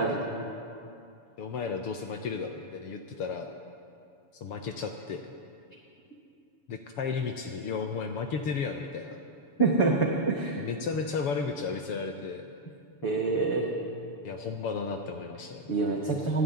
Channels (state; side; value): late; right; 7.0 ms